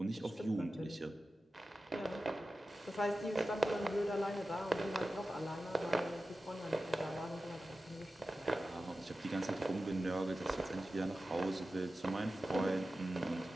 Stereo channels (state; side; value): normal; both; correlation 0.94